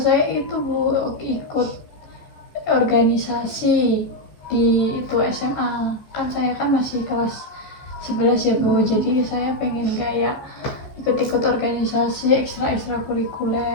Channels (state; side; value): late; right; 14 ms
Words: saya itu Bu ikut organisasi di itu SMA. Kan saya kan masih kelas 11 ya Bu. Jadi saya pengen kayak ikut-ikut organisasi ekstra